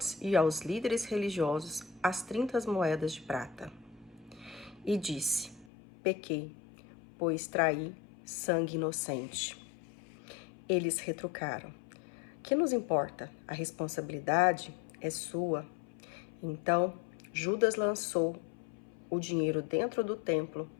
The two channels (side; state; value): right; drops out; at 5.7 s